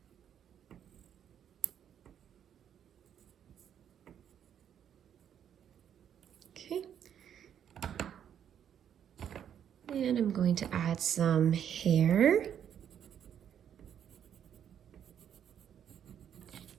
And I'm going to add some hair.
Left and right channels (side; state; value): left; quieter; 9.2 dB